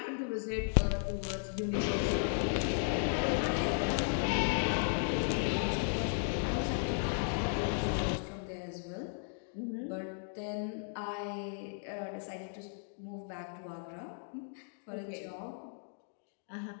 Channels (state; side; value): silent; right; digital silence